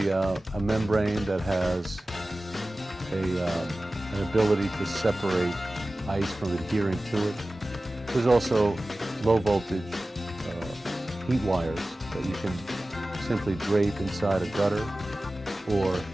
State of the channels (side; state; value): both; normal; correlation 0.96